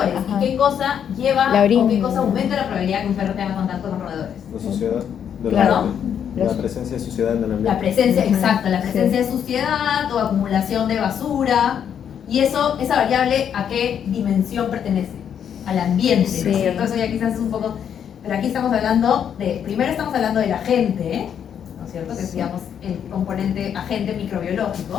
Ajá. ¿Y qué cosa lleva La orina. o qué cosa aumenta la probabilidad de que un perro tenga contacto con roedores? La suciedad del Claro. ambiente. La presencia de suciedad en el ambiente. La presencia, Ujú. exacto, la presencia Sí. de suciedad o acumulación de basura. Y eso, esa variable, ¿a qué dimensión pertenece? Al ambiente, ¿no Sí. es cierto? Eso ya quizás es un poco... Pero aquí estamos hablando de... Primero estamos hablando del agente, ¿no es cierto? Que es, digamos, el componente agente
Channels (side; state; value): right; quieter; 8.5 dB